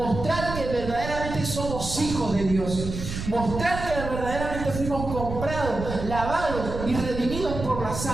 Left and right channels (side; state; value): right; noise; rumble, 7 dB below the sound